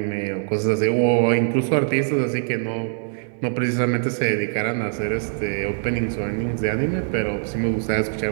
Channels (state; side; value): silent; left; 64 dB below the other